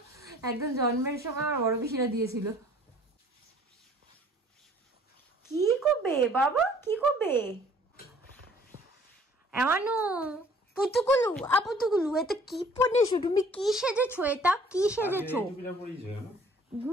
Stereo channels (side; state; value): both; normal; correlation 0.55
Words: একদম জন্মের সময় আমার বড় পিসিরা দিয়েছিল। কি করবে বাবা, কি করবে? এমানু পুতুকুলু, আপুতুকুলু, এটা কি পরেছো তুমি? কি সেজেছো? এটা কি সেজেছো?